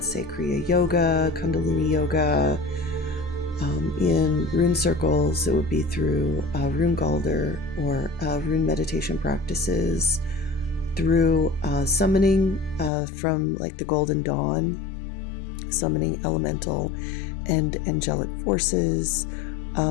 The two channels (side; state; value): right; drops out; at 12.9 s